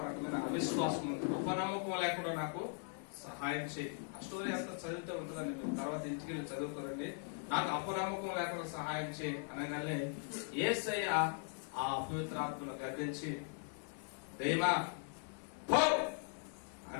రకమైన అవిశ్వాసం ఉంది, అపనమ్మకం లేకుండా నాకు సహాయం చేయి. ఆ స్టోరీ అంతా చదివితే ఉంటుందండి, మీరు తర్వాత ఇంటికి వెళ్ళి చదువుకోరండి. నాకు అపనమ్మకం లేకుండా సహాయం చేయి అనగానే యేసయ్య ఆ అపవిత్రాత్మను గర్దించి దైవా పో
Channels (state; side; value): silent; right; 51 dB below the other